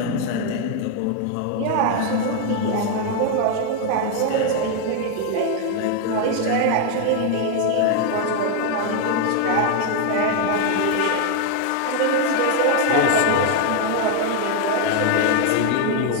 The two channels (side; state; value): both; different; correlation 0.00